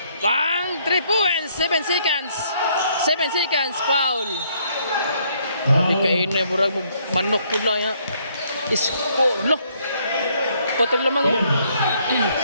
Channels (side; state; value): both; inverted; correlation -0.68